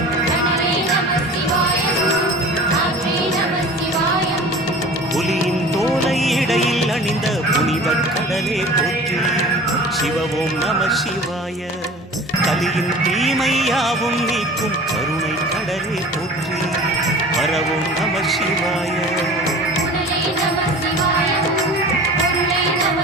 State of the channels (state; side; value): normal; both; correlation 0.41